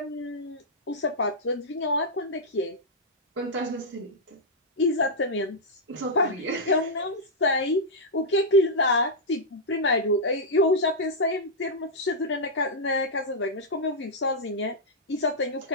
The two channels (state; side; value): normal; both; correlation -0.08